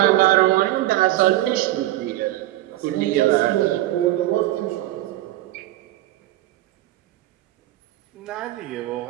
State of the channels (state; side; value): quieter; left; 15.5 dB